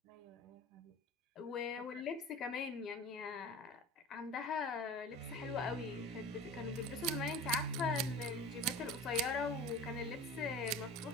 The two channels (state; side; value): normal; both; correlation 0.36